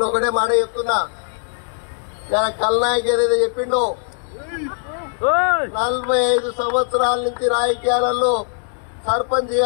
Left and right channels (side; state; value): right; silent; 66 dB below the other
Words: ఒకటే మాట చెప్తున్నా, కల్నాయక్ ఏదైతే చెప్పిండో 45 సంవత్సరాల నుంచి రాజకీయాలలో